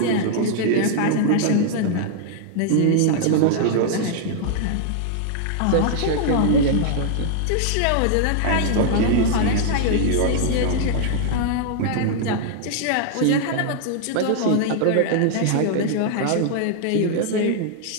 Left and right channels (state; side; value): different; both; correlation -0.01